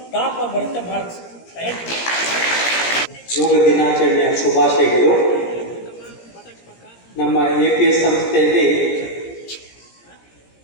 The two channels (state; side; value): late; right; 17 ms